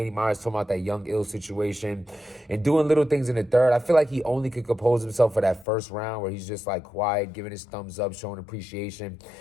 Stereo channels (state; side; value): drops out; right; at 5.7 s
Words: Myers, talking about that Young Ill situation and doing little things in the third. I feel like he only could compose himself for that first round where he's just like quiet, giving his thumbs up, showing appreciation.